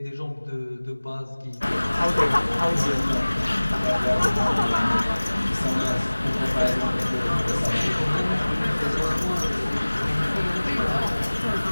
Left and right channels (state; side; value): inverted; both; correlation -1.00